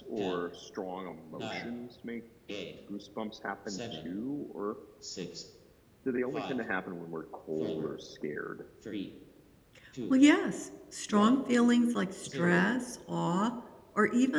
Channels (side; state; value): both; identical; correlation 1.00